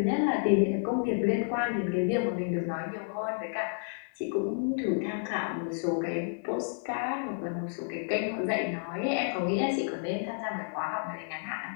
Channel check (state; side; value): silent; right; 57 dB below the other